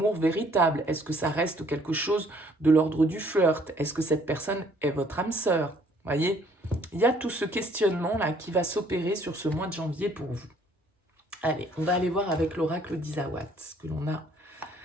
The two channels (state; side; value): normal; both; correlation 0.61